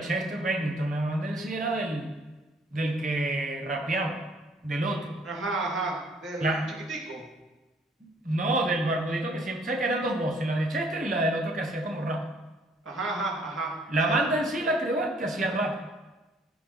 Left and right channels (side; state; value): both; normal; correlation 0.62